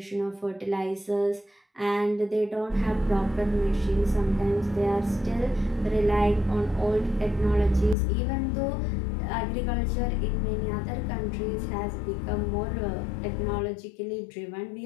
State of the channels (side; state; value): right; drops out; at 8.0 s